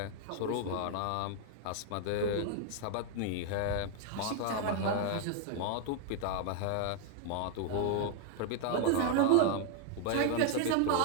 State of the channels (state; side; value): different; both; correlation 0.00